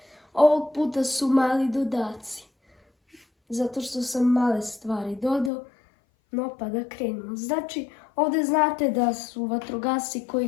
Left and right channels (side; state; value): right; drops out; at 5.5 s